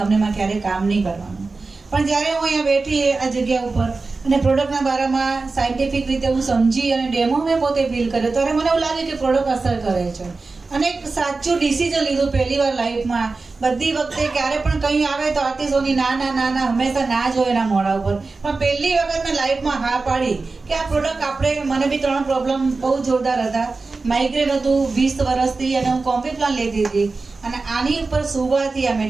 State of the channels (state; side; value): quieter; left; 3.9 dB